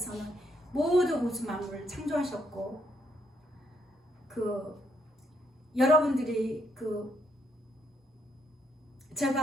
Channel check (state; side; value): normal; both; correlation 0.74